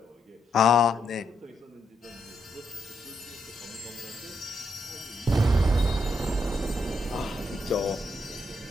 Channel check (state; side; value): normal; both; correlation 0.79